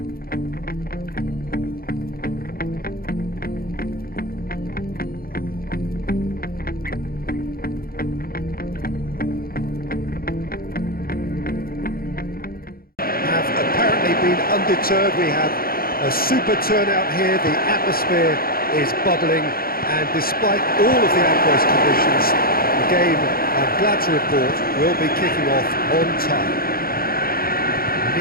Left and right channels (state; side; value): late; right; 0.43 ms